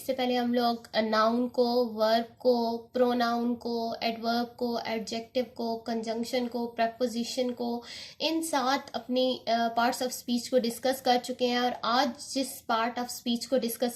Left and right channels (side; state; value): both; identical; correlation 1.00